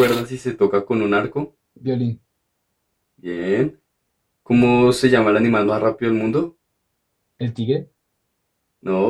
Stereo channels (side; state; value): both; identical; correlation 1.00